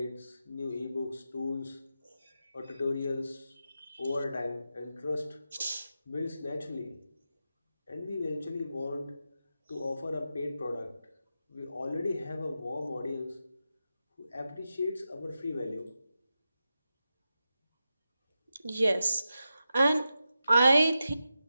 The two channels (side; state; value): both; inverted; correlation -0.90